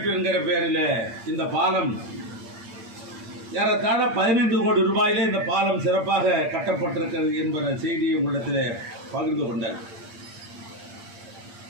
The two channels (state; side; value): late; left; 8.7 ms